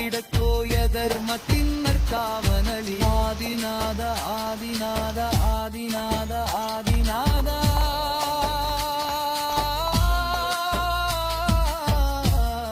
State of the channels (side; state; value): both; identical; correlation 1.00